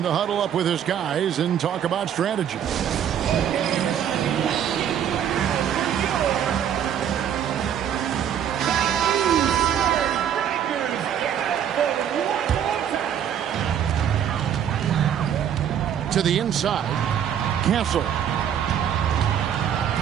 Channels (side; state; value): left; quieter; 9.3 dB